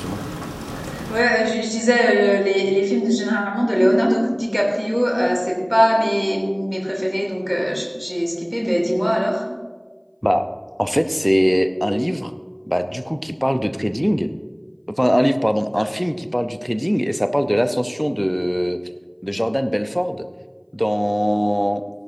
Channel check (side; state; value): both; identical; correlation 1.00